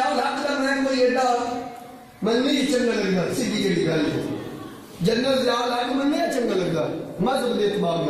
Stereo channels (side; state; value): both; identical; correlation 1.00